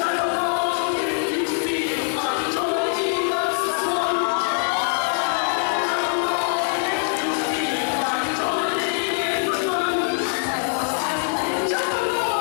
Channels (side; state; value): right; silent; 58 dB below the other